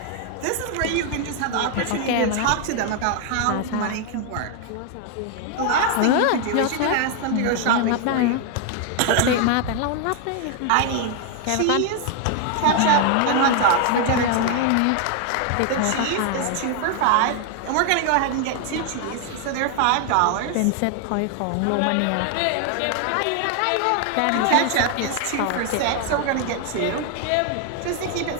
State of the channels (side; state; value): both; different; correlation 0.00